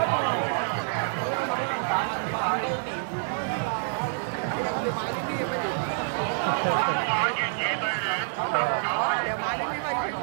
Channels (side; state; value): left; silent; 60 dB below the other